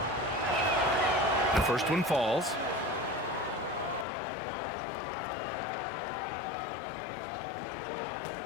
First one falls.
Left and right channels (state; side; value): drops out; right; at 4.0 s